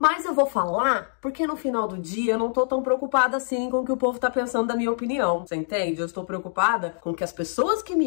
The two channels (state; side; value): silent; right; digital silence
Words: eu vou falar porque no final do dia eu não tô tão preocupada assim com o que o povo tá pensando da minha opinião. Você entende? Eu estou preocupada com o que as pessoas que